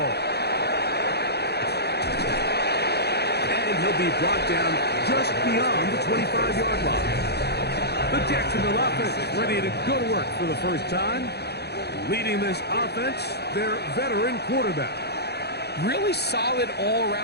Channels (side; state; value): right; late; 0.48 ms